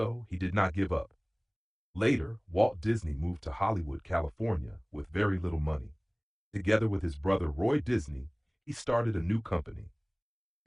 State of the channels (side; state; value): both; identical; correlation 1.00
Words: he did not give up. Later, Walt Disney moved to Hollywood, California, with very little money. Together with his brother Roy Disney, he started a new company.